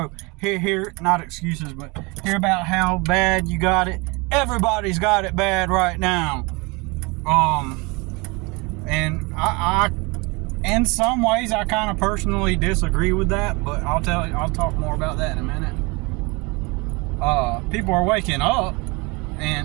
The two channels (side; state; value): left; quieter; 27.2 dB